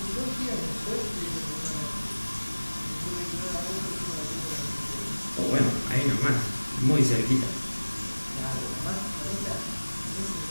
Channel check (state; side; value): inverted; both; correlation -1.00